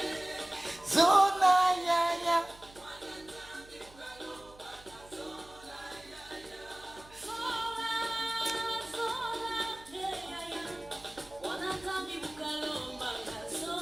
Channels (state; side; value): noise; right; hum, 23 dB below the sound